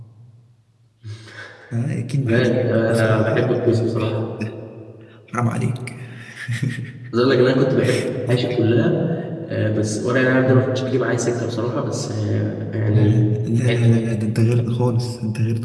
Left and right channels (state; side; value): identical; both; correlation 1.00